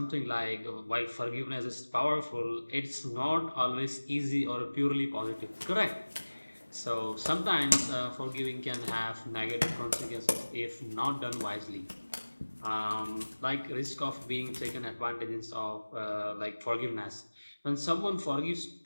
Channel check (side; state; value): both; inverted; correlation -1.00